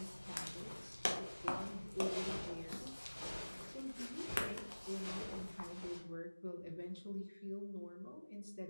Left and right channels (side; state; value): both; inverted; correlation -1.00